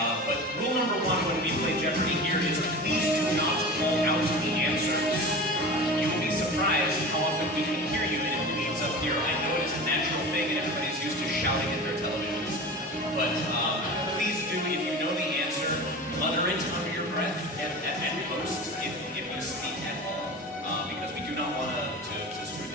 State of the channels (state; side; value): normal; both; correlation 0.33